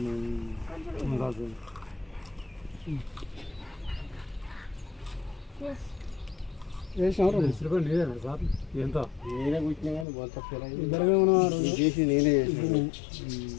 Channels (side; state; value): right; drops out; at 10.1 s